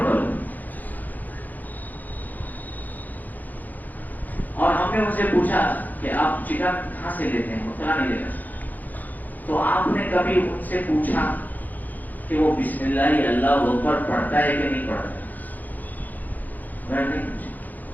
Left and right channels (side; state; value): right; late; 0.083 ms